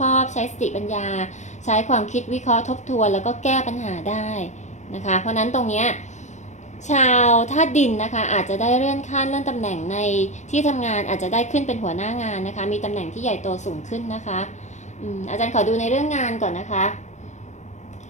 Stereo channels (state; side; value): late; right; 0.34 ms